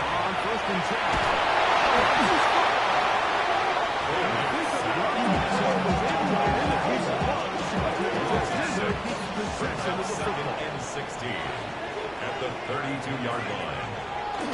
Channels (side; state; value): both; identical; correlation 1.00